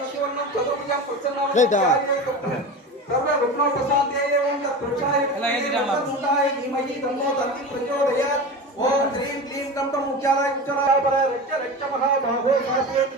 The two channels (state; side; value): normal; both; correlation 0.28